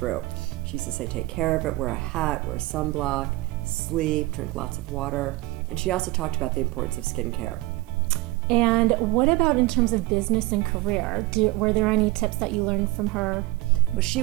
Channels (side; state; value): left; quieter; 20.9 dB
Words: She used to say take care of it, wear a hat, wear sunblock, sleep, drink lots of water. And she also talked about the importance of skincare. And what about in terms of business and career? Were there any tips that you learned from her? Well, she